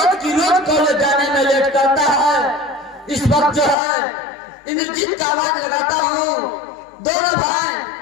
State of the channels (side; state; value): right; drops out; at 3.8 s